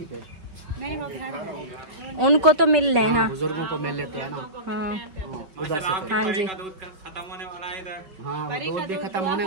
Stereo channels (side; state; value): left; late; 5.3 ms